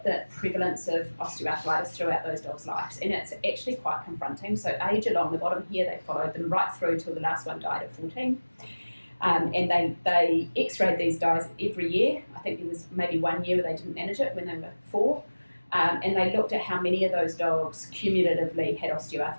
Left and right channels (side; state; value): both; inverted; correlation -1.00